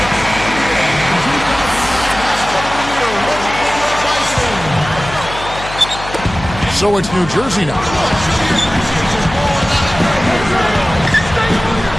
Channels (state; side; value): noise; left; hum, 12 dB below the sound